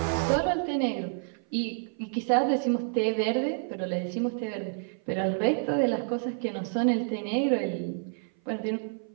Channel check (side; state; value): left; silent; 56 dB below the other